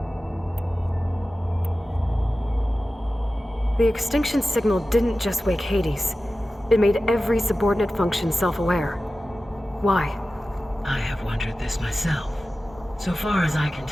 The extinction signal didn't just wake Hades. It made every subordinate function self-aware. Why? I have wondered this myself. So far as I can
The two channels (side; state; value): both; normal; correlation 0.95